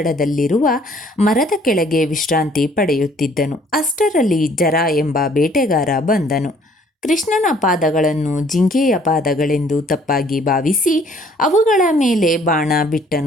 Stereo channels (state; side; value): normal; both; correlation 0.59